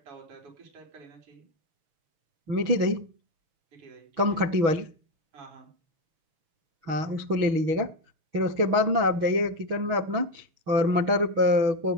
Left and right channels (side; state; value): left; late; 6.2 ms